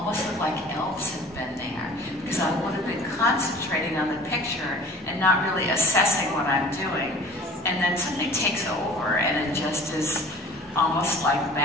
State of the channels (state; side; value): normal; both; correlation 0.45